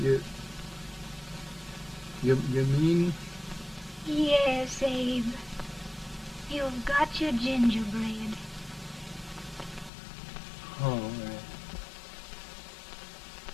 You mean? Yes, Abe. You've got your gingerbread. Oh,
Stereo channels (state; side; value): drops out; right; at 9.9 s